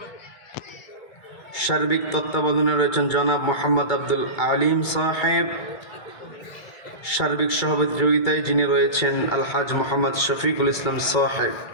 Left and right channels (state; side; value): late; right; 2.2 ms